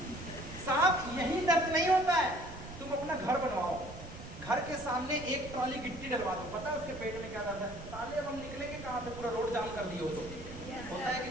साहब, यही दर्द नहीं होता है। तुम अपना घर बनवाओ, घर के सामने एक ट्रॉली गिट्टी डलवा दो, पता है उसके पेट में क्या जाता है? साले अब हम निकलेंगे कहाँ से, पूरा रोड जाम कर दिए हो तो होता है कि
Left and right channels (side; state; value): right; noise; rumble, 13 dB below the sound